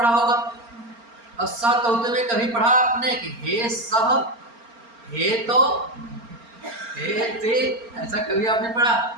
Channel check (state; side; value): late; left; 4.3 ms